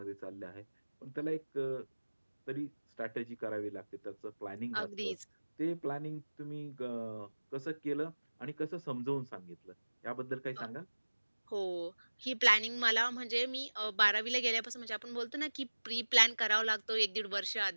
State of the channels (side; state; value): both; inverted; correlation -1.00